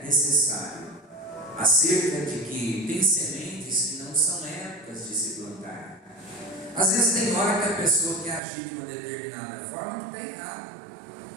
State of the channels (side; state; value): left; drops out; at 8.4 s